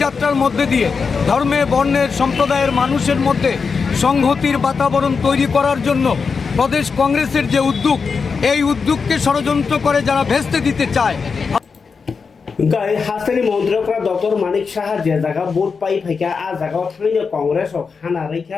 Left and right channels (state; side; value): quieter; right; 5.2 dB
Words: যাত্রার মধ্যে দিয়ে ধর্মে, বর্ণের, সম্প্রদায়ের মানুষের মধ্যে সংহতির বাতাবরণ তৈরি করার জন্য প্রদেশ কংগ্রেসের যে উদ্যোগ, এই উদ্যোগকে ষড়যন্ত্র করে যারা ভেস্তে দিতে চায়। হাস্তানি মন্ত্রীরা ডক্টর মানিক সাহা যে জায়গা ভোট পাই ফাইকা আ জায়গাও থাইनो কংগ্রেস হানা